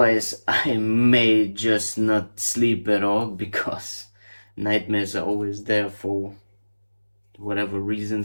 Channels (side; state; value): both; inverted; correlation -1.00